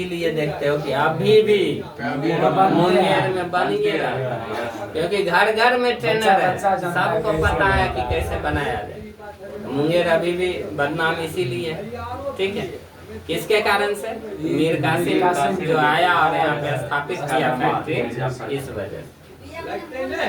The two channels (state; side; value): identical; both; correlation 1.00